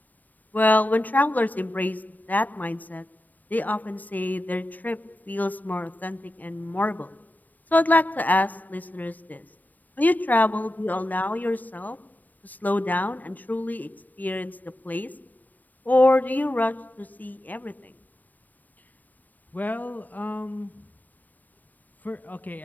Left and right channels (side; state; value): right; late; 0.085 ms